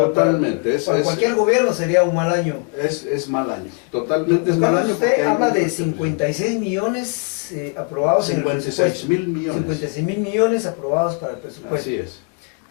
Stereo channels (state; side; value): quieter; right; 35.4 dB